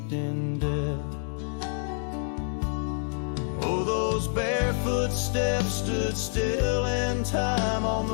in death. Oh, those barefoot steps stood still in time on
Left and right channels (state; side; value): silent; right; 60 dB below the other